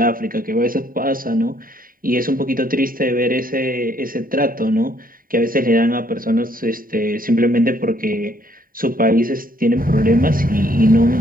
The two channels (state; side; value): late; left; 0.41 ms